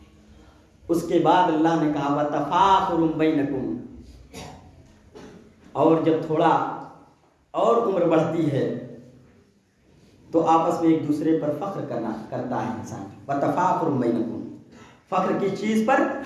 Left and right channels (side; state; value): both; identical; correlation 1.00